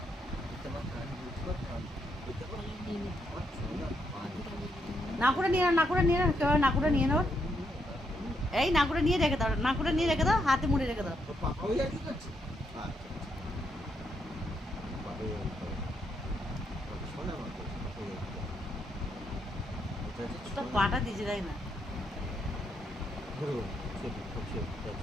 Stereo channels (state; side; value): normal; both; correlation 0.78